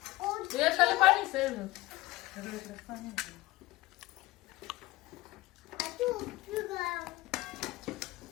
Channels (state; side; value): quieter; right; 18.9 dB